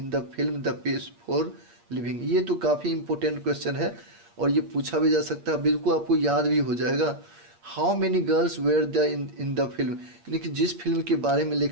the film the pace for living. ये तो काफ़ी इंपॉर्टेंट क्वेश्चन है और ये पूछा भी जा सकता है, बिल्कुल आपको याद भी हो जाएगा। How many girls were the in the film, यानी कि जिस फिल्म के बारे में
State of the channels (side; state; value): left; late; 8.5 ms